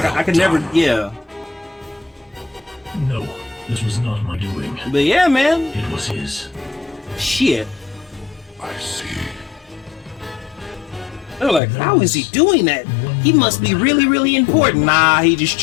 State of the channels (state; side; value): drops out; right; at 11.6 s